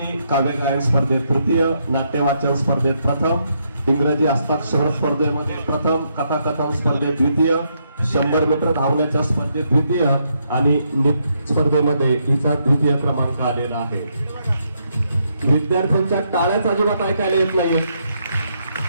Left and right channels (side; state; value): both; inverted; correlation -0.77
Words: काव्य गायन स्पर्धेत तृतीय, नाट्यवाचन स्पर्धेत प्रथम, इंग्रजी हस्ताक्षर स्पर्धेमध्ये प्रथम, कथाकथन स्पर्धेत द्वितीय, 100 मीटर धावण्याच्या स्पर्धेत द्वितीय आणि स्पर्धेमध्ये हिचा द्वितीय क्रमांक आलेला आहे. विद्यार्थ्यांच्या टाळ्याच अजिबात ऐकायला येत नाही.